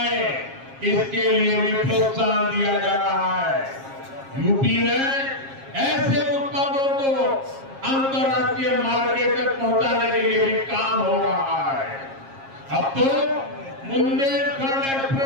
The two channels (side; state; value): left; late; 7.4 ms